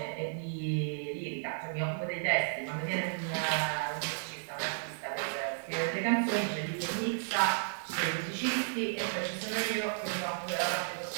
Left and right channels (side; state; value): left; silent; digital silence